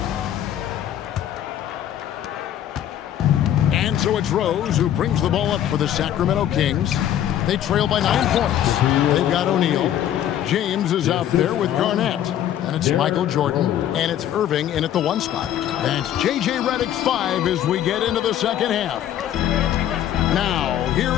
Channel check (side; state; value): right; quieter; 11.1 dB